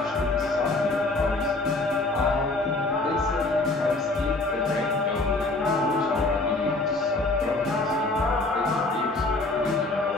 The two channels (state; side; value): quieter; right; 3.0 dB